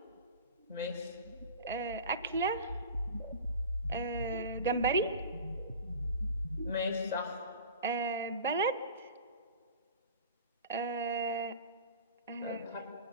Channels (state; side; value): inverted; both; correlation -0.37